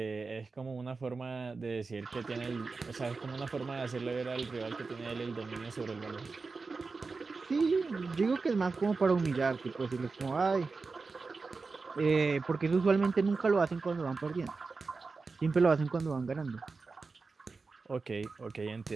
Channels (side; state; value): left; quieter; 4.2 dB